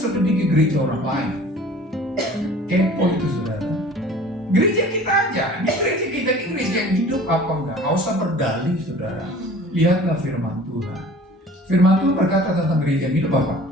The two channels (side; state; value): both; normal; correlation 0.46